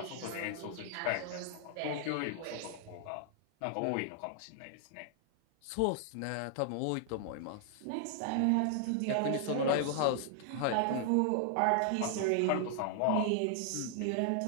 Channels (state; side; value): different; both; correlation 0.00